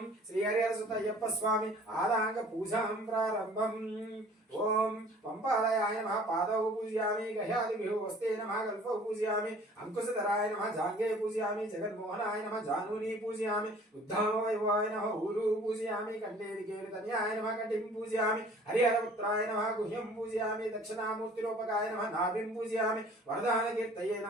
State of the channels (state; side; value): normal; both; correlation 0.51